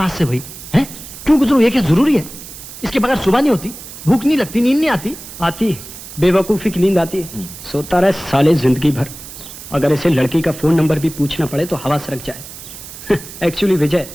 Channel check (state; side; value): noise; right; hiss, 14 dB below the sound